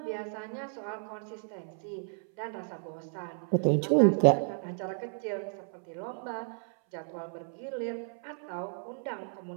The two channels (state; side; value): silent; left; 56 dB below the other